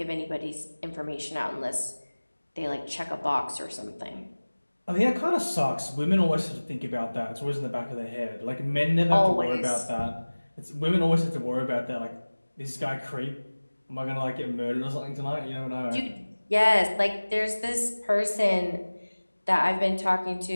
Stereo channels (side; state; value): both; inverted; correlation -1.00